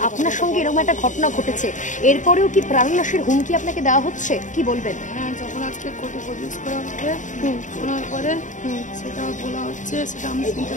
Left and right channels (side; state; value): right; late; 0.36 ms